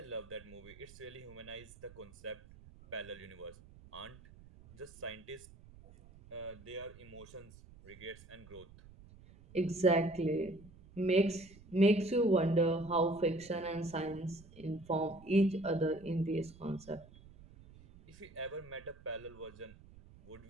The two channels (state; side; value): noise; right; rumble, 21 dB below the sound